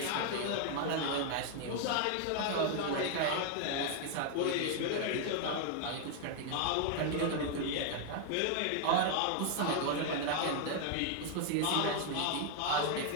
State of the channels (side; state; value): both; different; correlation 0.00